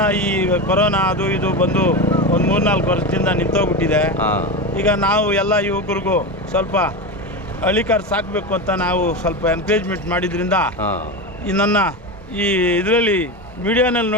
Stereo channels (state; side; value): normal; both; correlation 0.19